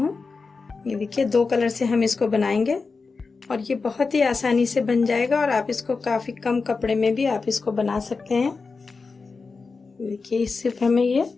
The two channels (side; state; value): right; quieter; 4.4 dB